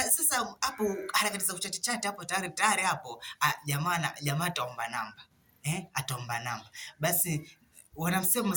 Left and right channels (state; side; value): identical; both; correlation 1.00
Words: sasa hapo harakati za kuchat hapo tayari hapo jamaa ataomba namba. Ataomba namba. Basi